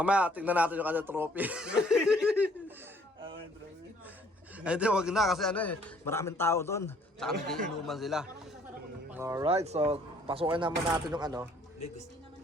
tingnan natin yung kanyang trophy. Ay, di, wag na kasi maraming tao doon. Tsaka nagiinuman sila. Alright, so pasukin naman natin yung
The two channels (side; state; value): both; normal; correlation 0.61